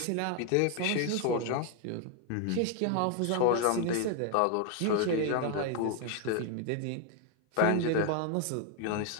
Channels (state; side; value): different; both; correlation 0.01